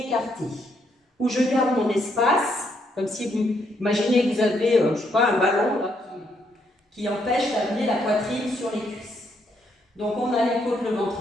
Où je garde mon espace, comme si vous imaginez que vous avez, je sais pas, un ballon là, qui empêche d'amener la poitrine sur les cuisses. Donc on a les côtes, le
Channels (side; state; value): both; normal; correlation 0.74